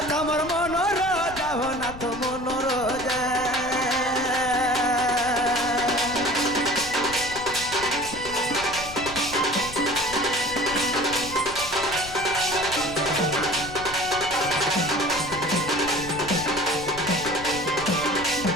তোমার মনোর যাও না তো মনোর যা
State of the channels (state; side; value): noise; left; rumble, 14 dB below the sound